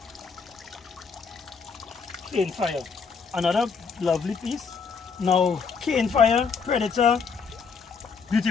Cane Fire, another lovely piece. Now, Cane Fire, Predator,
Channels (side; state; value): right; quieter; 5.6 dB